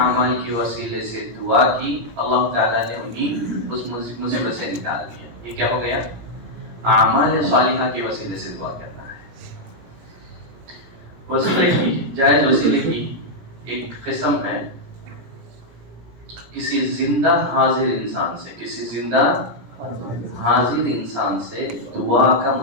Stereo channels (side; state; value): left; late; 17 ms